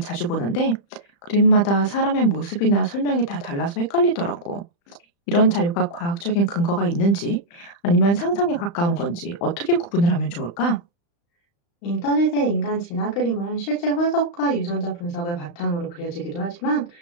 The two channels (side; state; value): right; late; 35 ms